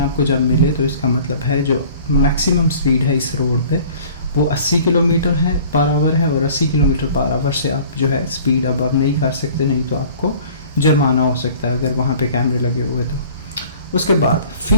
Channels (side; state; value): both; inverted; correlation -0.49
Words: जब मिले तो इसका मतलब है जो मैक्सिमम स्पीड है इस रोड पे वो 80 किलोमीटर है पर आवर है, और 80 किलोमीटर पर आवर से आप जो है स्पीड अब नहीं कर सकते, नहीं तो आपको जुर्माना हो सकता है अगर वहाँ पे कैमरे लगे हुए तो। उसके बाद